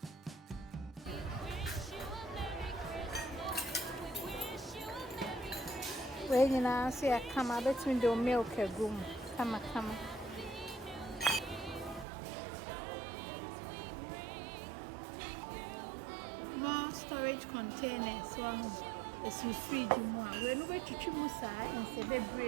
Wish you a Merry Christmas. We When you now see a come, I bet me the milk a room. Come. More storage containers. One is in fridge more. When we to Chimusa in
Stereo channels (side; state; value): left; drops out; at 12.1 s